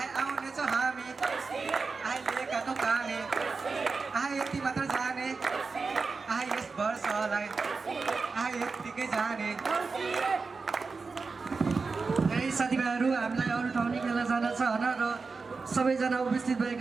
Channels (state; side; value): quieter; left; 4.4 dB